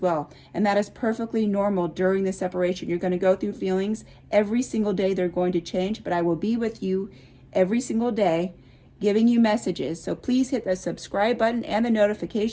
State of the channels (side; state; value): both; identical; correlation 1.00